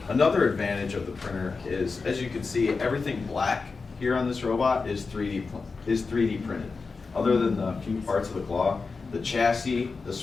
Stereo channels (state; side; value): quieter; right; 4.4 dB